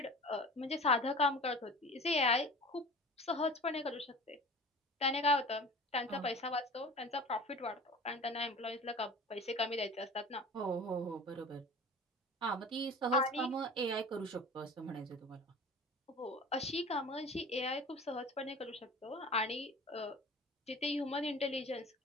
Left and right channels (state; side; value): normal; both; correlation 0.39